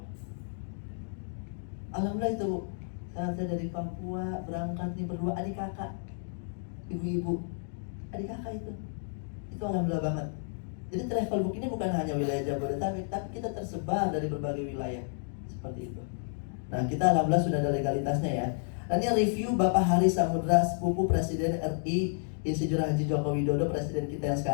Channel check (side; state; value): right; silent; digital silence